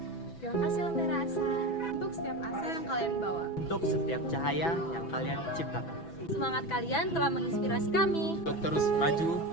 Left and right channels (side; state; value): right; late; 6.0 ms